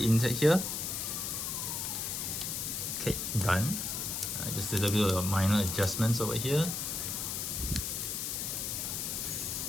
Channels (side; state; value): left; noise; hiss, 2 dB below the sound